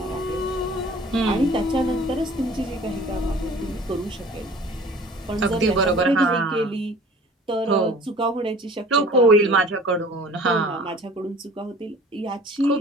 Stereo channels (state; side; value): normal; both; correlation 0.47